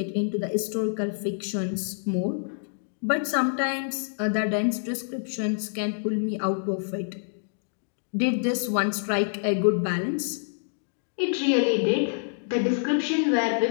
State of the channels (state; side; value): silent; right; digital silence